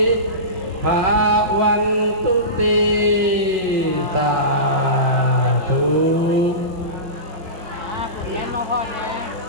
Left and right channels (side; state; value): left; late; 5.5 ms